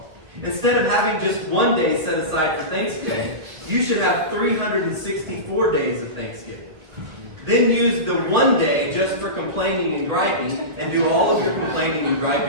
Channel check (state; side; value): late; left; 1.3 ms